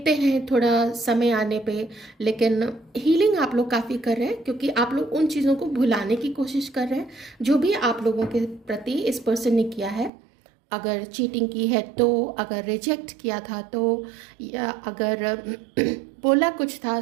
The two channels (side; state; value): left; drops out; at 10.1 s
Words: हैं थोड़ा समय आने पे, लेकिन हीलिंग आप लोग काफ़ी कर रहे हैं क्योंकि आप लोग उन चीज़ों को भुलाने की कोशिश कर रहे हैं जो भी आप लोगों के प्रति इस पर्सन ने किया है। अगर चीटिंग की है तो, अगर रिजेक्ट किया था तो, या अगर बोला कुछ था,